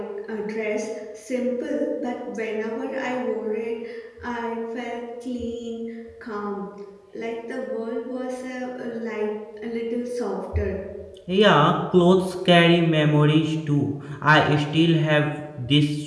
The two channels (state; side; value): identical; both; correlation 1.00